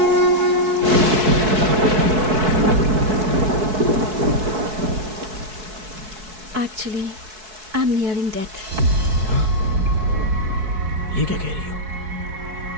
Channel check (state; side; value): late; left; 4.6 ms